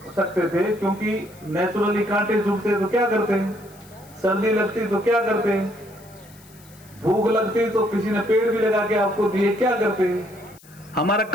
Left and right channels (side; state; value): left; noise; hiss, 25 dB below the sound